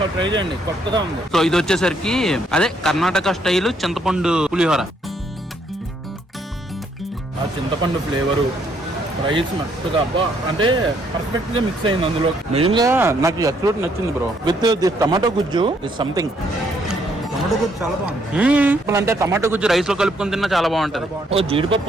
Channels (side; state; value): both; normal; correlation 0.70